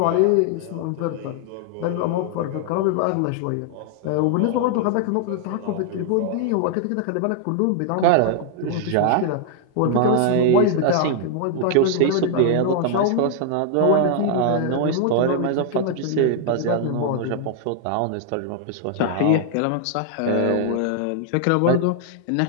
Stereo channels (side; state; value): both; different; correlation 0.00